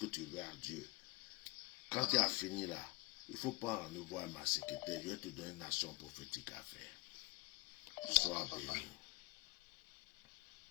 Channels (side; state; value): right; quieter; 24.6 dB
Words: tu veux à Dieu. Quand tu as fini là, il faut pas en voir ma secrétaire. Je vais te donner une action prophétique à faire. Sois béni.